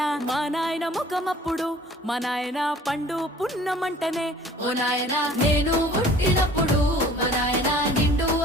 మా నాయన ముఖమప్పుడు మా నాయన పండు పున్నమంటనే ఓ నాయన నేను పుట్టినప్పుడు మా నాయన నిండు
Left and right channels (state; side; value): normal; both; correlation 0.50